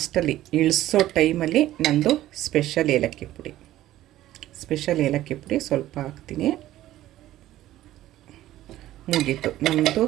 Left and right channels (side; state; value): left; quieter; 14.3 dB